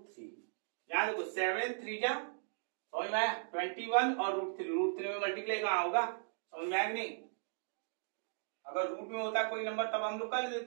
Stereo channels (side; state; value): left; silent; digital silence